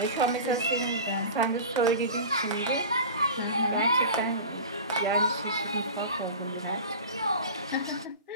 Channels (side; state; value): both; inverted; correlation -0.33